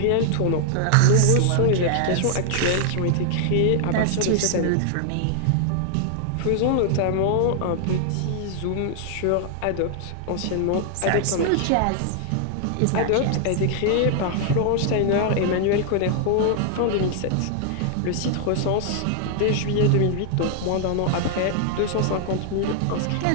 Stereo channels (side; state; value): both; different; correlation -0.01